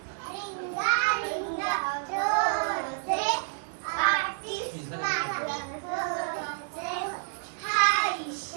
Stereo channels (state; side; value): silent; left; 58 dB below the other